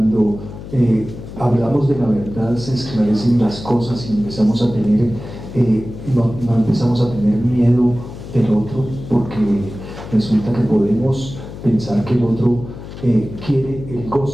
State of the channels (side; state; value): left; noise; hum, 12 dB below the sound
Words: hablamos de la verdad se esclarecen las cosas y empezamos a tener, no empezamos a tener miedo del otro, porque resulta que podemos pensar que el otro quiere el